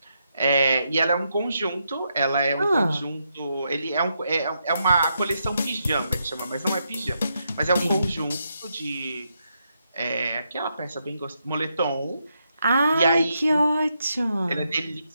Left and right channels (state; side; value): inverted; both; correlation -0.81